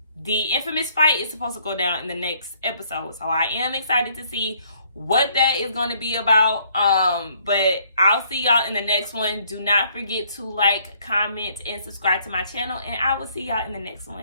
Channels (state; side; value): inverted; both; correlation -0.65